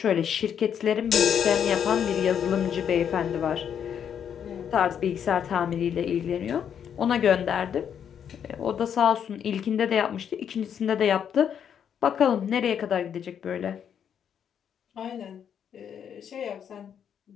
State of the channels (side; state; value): right; quieter; 8.4 dB